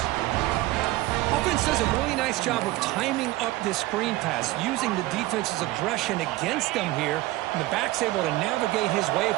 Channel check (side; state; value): left; quieter; 18.2 dB